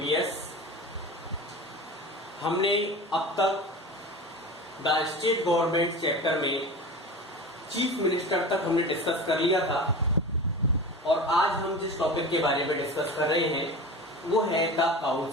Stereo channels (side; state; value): both; normal; correlation 0.32